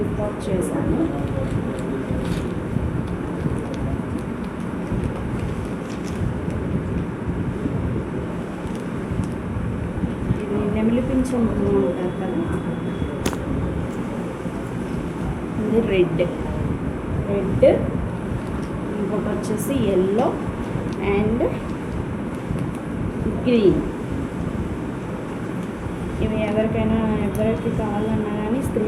చేశాను. ఇది నెమిలి పింఛం అంటారు కదా, రెడ్. ఇంకొకటి వచ్చేసి ఎల్లో అండ్ గ్రీన్. ఇవి ఎవరికి కావాలన్నా కానీ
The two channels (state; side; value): identical; both; correlation 1.00